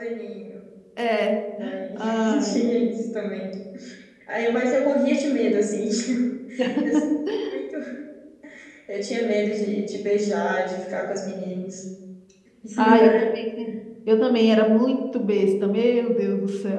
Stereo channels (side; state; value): both; identical; correlation 1.00